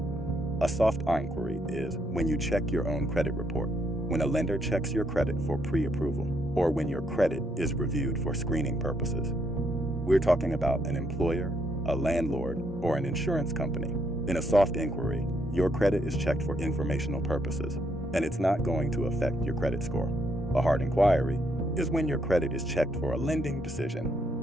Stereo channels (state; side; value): normal; both; correlation 0.74